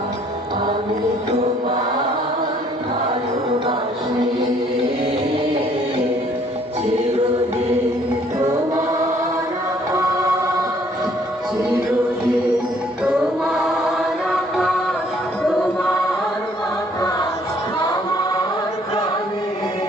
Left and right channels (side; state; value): both; normal; correlation 0.62